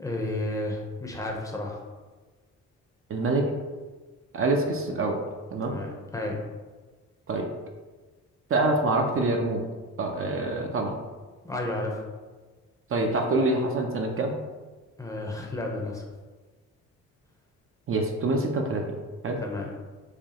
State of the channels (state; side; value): normal; both; correlation 0.24